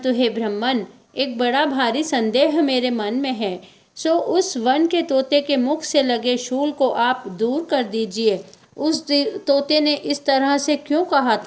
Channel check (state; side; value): identical; both; correlation 1.00